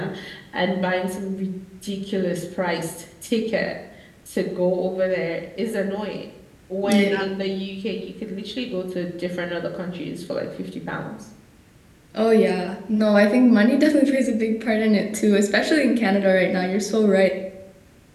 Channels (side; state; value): both; identical; correlation 1.00